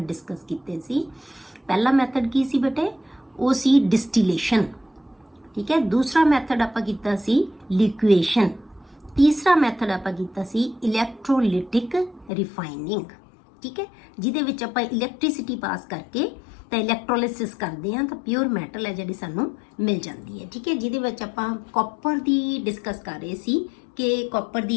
ਡਿਸਕਸ ਕੀਤੇ ਸੀ। ਪਹਿਲਾ ਮੈਥਡ ਕੀ ਸੀ ਬੇਟੇ? ਉਹ ਸੀ ਡਿਸਟੀਲੇਸ਼ਨ। ਠੀਕ ਹੈ, ਦੂਸਰਾ ਮੈਥਡ ਆਪਾਂ ਕੀਤਾ ਸੀ ਲਿਕੁਏਸ਼ਨ, ਤੀਸਰਾ ਮੈਥਡ ਆਪਾਂ ਕੀਤਾ ਸੀ ਇਲੈਕਟ੍ਰੋਲਿਟਿਕ ਰਿਫਾਈਨਿੰਗ। ਠੀਕ ਹੈ, ਜਿਹਦੇ ਵਿੱਚ ਆਪਾਂ ਇਲੈਕਟ੍ਰਿਸਿਟੀ ਪਾਸ ਕਰਕੇ ਤਾਂ ਇਲੈਕਟ੍ਰੋਲਿਸਿਸ ਕਰਦੇ ਹਾਂ ਤਾਂ ਪਿਓਰ ਮੈਟਲ ਹੈ ਜਿਹੜੀ ਸਾਨੂੰ ਮਿਲ ਜਾਂਦੀ ਹੈ। ਠੀਕ ਹੈ, ਜਿਹਦੇ ਵਿੱਚ ਆਪਾਂ ਕਾਪਰ ਦੀ ਡਿਸਕਸ ਕਰ ਰਹੇ ਸੀ ਕਿ ਕਾਪਰ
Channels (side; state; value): right; drops out; at 12.3 s